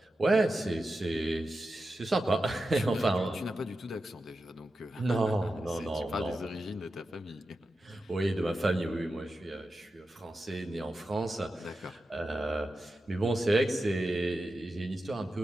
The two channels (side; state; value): both; normal; correlation 0.91